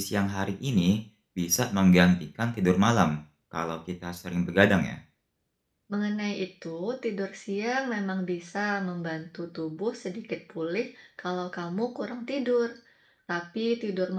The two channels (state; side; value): identical; both; correlation 1.00